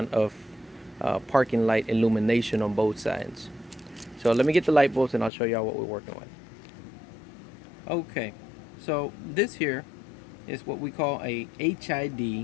of parking light illumination on both sides. So let me get the light bulbs and I'll show y'all what we're working with. Okay, so this here is what we call a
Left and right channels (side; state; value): right; drops out; at 5.3 s